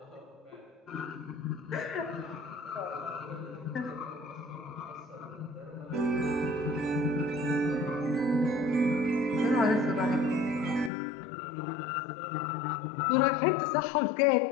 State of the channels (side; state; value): right; drops out; at 10.9 s